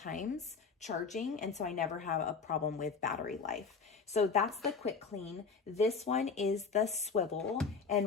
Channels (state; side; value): quieter; right; 5.2 dB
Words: charging, and so I never have a problem with battery life. So that's the QuickClean. This one is the swivel,